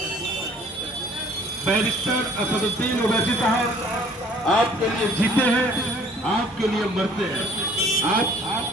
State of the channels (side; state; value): both; normal; correlation 0.55